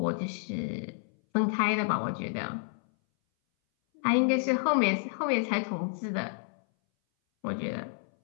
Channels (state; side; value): silent; right; 58 dB below the other